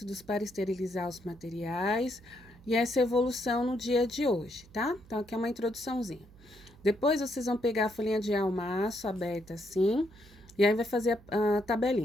para esterilizar os materiais e essa evolução no dia de hoje, tá? Então, aqui é uma introduçãozinha. Depois, vocês vão pegar a folhinha de almaço aberta assim, e aí vai fazer a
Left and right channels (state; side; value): noise; right; hum, 24 dB below the sound